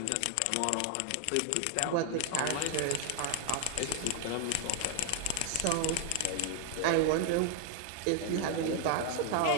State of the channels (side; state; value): both; different; correlation 0.00